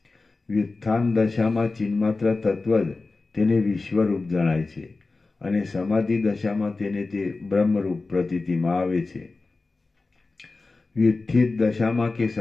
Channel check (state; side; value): quieter; right; 3.6 dB